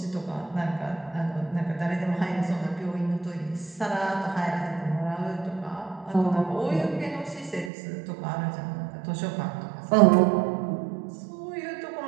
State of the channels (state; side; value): drops out; left; at 7.7 s